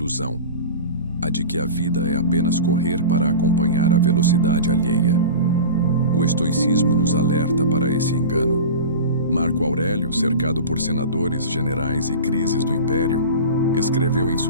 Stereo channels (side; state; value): both; inverted; correlation -0.31